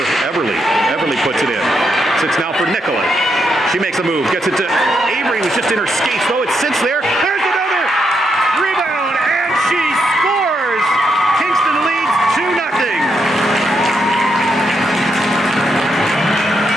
Everly. Everly puts it in. Sits now for Nicola. She makes a move. Gets it to Avery, who's just in her skates, though. It sits there. There's another rebound, and she scores! Kingston leads 2-0.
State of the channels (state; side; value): normal; both; correlation 0.80